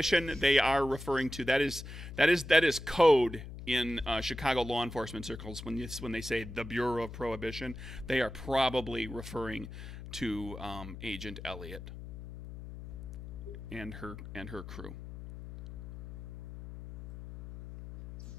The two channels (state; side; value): noise; left; hum, 11 dB below the sound